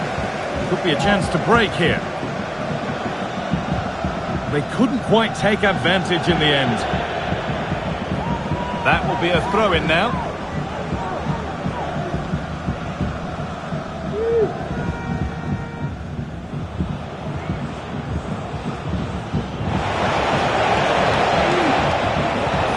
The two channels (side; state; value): both; identical; correlation 1.00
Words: Could be a chance to break here. They couldn't quite take advantage in the end. That will be a throw-in now.